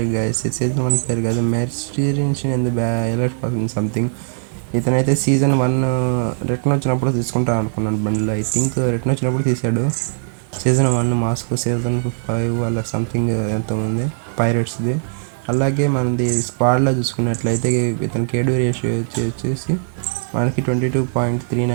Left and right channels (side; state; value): left; silent; 66 dB below the other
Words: guys, season 1 player కాదు, mercenaries in the alert person something. ఇతనైతే సీజన్ 1 రిటర్న్ వచ్చినప్పుడు తీసుకుంటా అనుకున్నాను బండిలో. ఐ థింక్ రిటర్న్ వచ్చినప్పుడు తీసాడు. సీజన్ 1 మాస్కో, సీజన్ 5 అలా సంథింగ్ ఎంతోమంది పైరేట్స్ది. అలాగే మనది స్క్వాడ్లో చూసుకున్నట్లయితే ఇతను కేడీ రేషియో వచ్చేసి మనకి